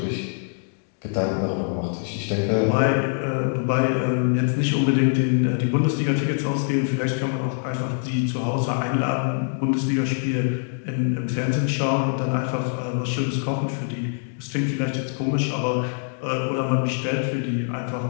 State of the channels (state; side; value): silent; right; 63 dB below the other